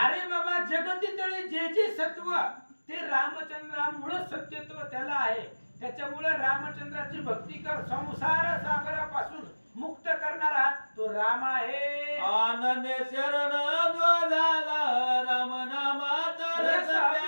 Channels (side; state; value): both; inverted; correlation -1.00